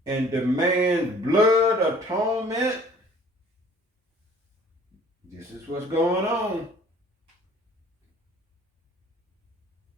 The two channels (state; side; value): normal; both; correlation 0.53